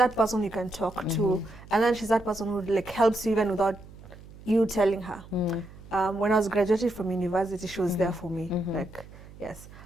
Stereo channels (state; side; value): noise; right; hum, 19 dB below the sound